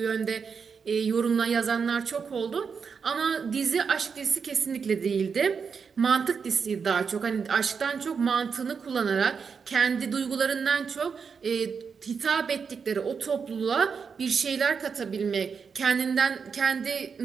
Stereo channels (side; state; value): left; quieter; 5.9 dB